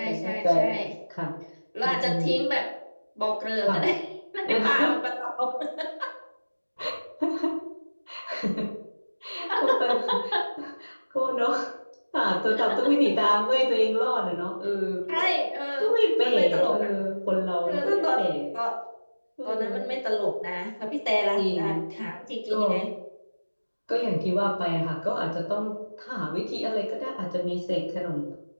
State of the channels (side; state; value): both; inverted; correlation -1.00